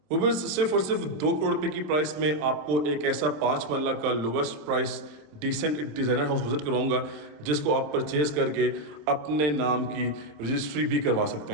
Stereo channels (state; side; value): late; left; 26 ms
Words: Viewers सिर्फ और सिर्फ 2 करोड़ रुपए की प्राइस में आपको एक ऐसा 5 मरला का lowest price decent designer house visit करवाऊंगा जिसको आप परचेज करके अपने नाम की रजिस्ट्री भी करवा सकते